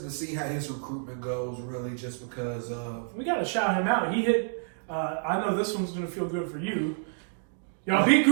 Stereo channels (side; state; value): left; silent; digital silence